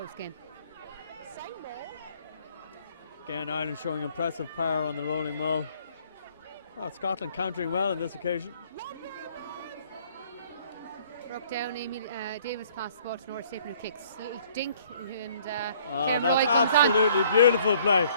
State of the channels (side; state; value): both; inverted; correlation -0.60